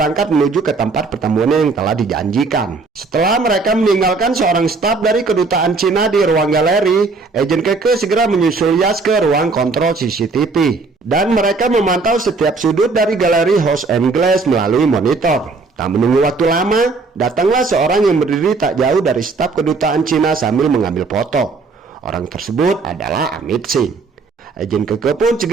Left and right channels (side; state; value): left; quieter; 4.1 dB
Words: menuju ke tempat pertemuan yang telah dijanjikan. Setelah mereka meninggalkan seorang staf dari kedutaan Cina di ruang galeri, agen Keke segera menyusul Yas ke ruang kontrol CCTV. Dan mereka memantau setiap sudut dari galeri House and Glass melalui monitor. Tak menunggu waktu lama, datanglah seorang yang berdiri tak jauh dari staf kedutaan Cina sambil mengambil foto. Orang tersebut adalah Amit Singh. Agen Keke pun